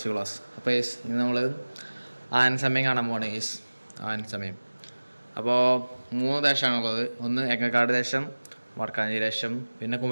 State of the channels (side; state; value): both; inverted; correlation -1.00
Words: class. അപ്പോൾ ഇന്ന് നമ്മൾ ആന സമയം കാണാൻ പോവാണ്. ആന സമയം അപ്പോൾ 3 ദേശമാണുള്ളത്. ഒന്ന് എങ്ങക്കാട് ദേശം, വടക്കാഞ്ചേരി ദേശം, പിന്നെ